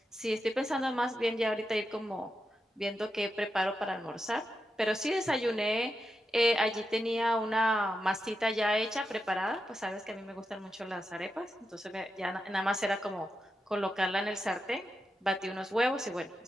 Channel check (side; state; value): both; normal; correlation 0.87